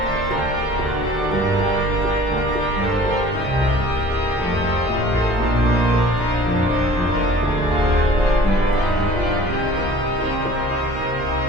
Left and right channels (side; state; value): both; normal; correlation 0.46